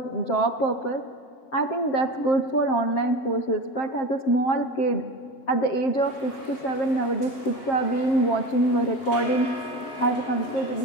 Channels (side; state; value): right; late; 7.6 ms